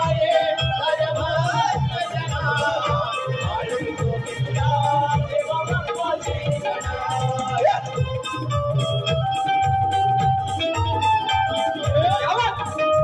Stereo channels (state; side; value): identical; both; correlation 1.00